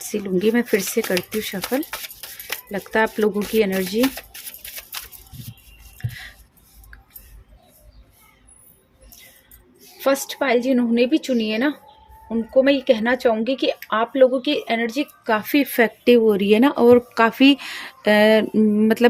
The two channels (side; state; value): both; identical; correlation 1.00